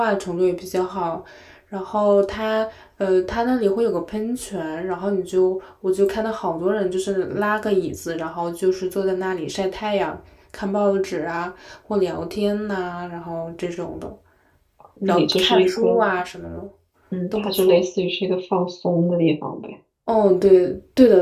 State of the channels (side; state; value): both; identical; correlation 1.00